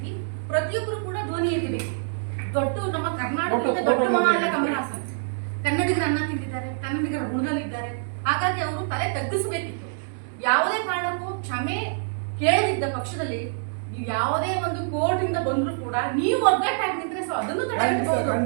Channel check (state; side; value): silent; left; digital silence